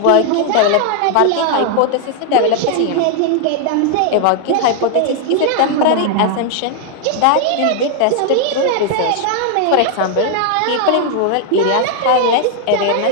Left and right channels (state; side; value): different; both; correlation 0.00